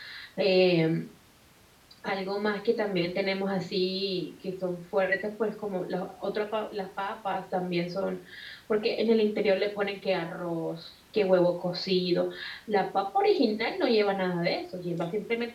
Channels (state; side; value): identical; both; correlation 1.00